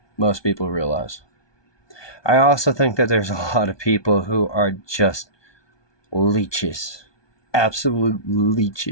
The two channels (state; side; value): late; right; 1.2 ms